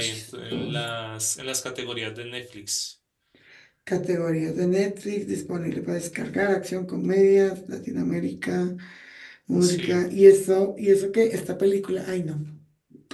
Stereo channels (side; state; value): both; identical; correlation 1.00